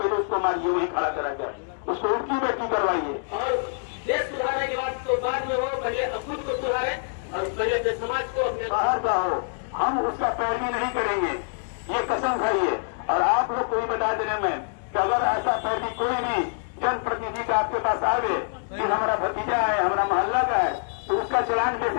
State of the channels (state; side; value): silent; right; digital silence